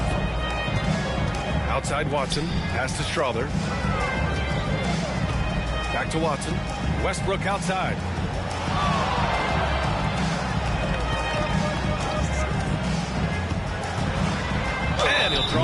Outside Watson. Pass to Strother. Back to Watson. Westbrook outside. And he'll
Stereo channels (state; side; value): identical; both; correlation 1.00